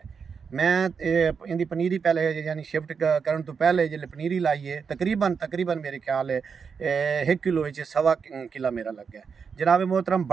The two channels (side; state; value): left; quieter; 6.0 dB